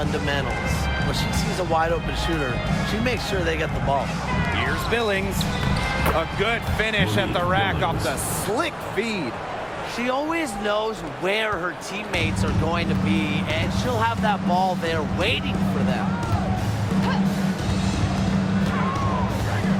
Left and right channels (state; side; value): identical; both; correlation 1.00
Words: When she sees a wide-open shooter, she makes sure they get the ball. Here's Billings. A good finish at the rack off the slick feed. She always knows where her teammates are going to be, and she'll have that ball there waiting for them.